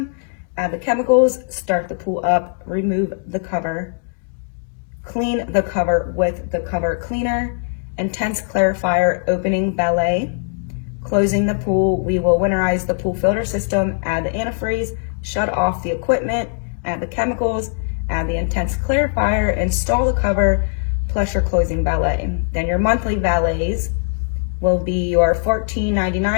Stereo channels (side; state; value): right; silent; 66 dB below the other